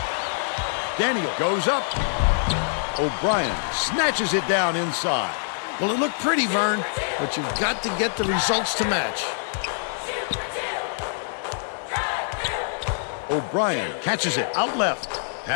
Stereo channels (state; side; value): silent; right; 55 dB below the other